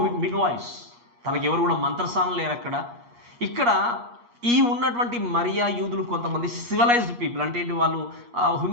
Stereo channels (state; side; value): late; left; 8.4 ms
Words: మిడ్ వాయిస్. తనకి ఎవరు కూడా మంత్రసానం లేరు అక్కడ. ఇక్కడ ఈ ఉన్నటువంటి మరియా యూదులు కొంతమంది సివిలైజ్డ్ పీపుల్, అంటే ఏంటి, వాళ్ళు